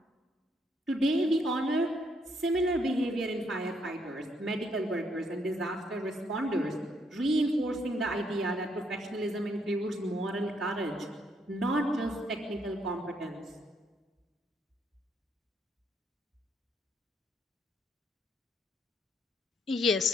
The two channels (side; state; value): both; normal; correlation 0.72